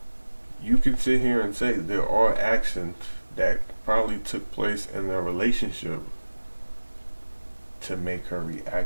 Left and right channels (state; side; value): inverted; both; correlation -1.00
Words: you can sit here and say there are actions that probably took place in their relationship to make her